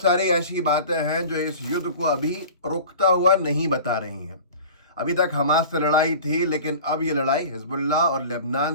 सारी ऐसी बातें हैं जो इस युद्ध को अभी रुकता हुआ नहीं बता रही हैं। अभी तक हमास से लड़ाई थी, लेकिन अब ये लड़ाई हिजबुल्लाह और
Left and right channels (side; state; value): both; inverted; correlation -0.40